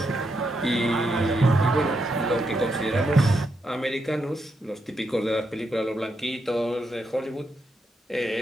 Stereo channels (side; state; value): both; normal; correlation 0.82